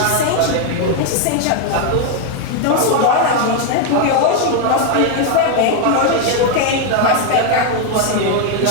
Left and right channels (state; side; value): different; both; correlation 0.01